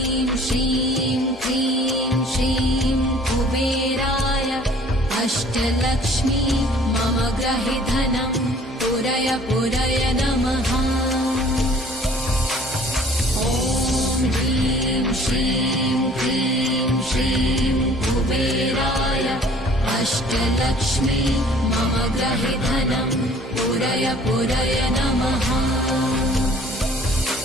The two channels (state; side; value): normal; both; correlation 0.53